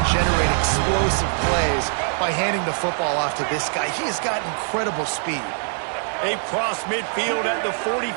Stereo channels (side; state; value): left; silent; 64 dB below the other